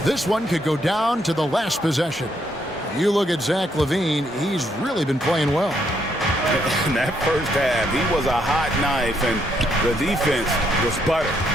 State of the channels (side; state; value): both; normal; correlation 0.74